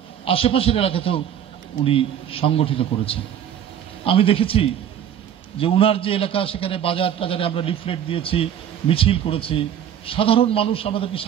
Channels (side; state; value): left; quieter; 9.6 dB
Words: আশেপাশের এলাকাতেও উনি সংগঠিত করেছেন। আমি দেখেছি যে উনার যে এলাকা, সেখানে বাজার টাজারে আমরা লিফলেট দিয়েছি, মিছিল করেছি, সাধারণ মানুষ আমাদেরকে